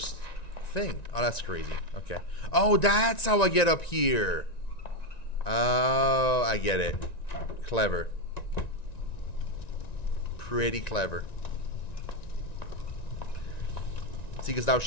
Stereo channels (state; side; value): late; right; 1.9 ms